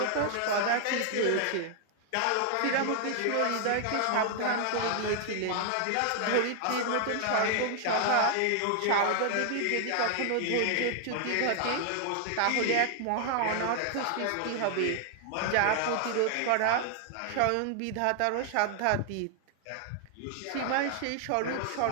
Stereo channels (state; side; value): different; both; correlation 0.00